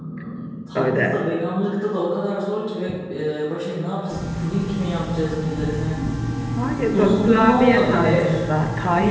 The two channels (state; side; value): identical; both; correlation 1.00